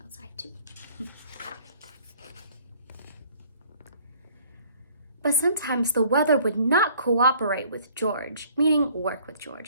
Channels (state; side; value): inverted; both; correlation -0.57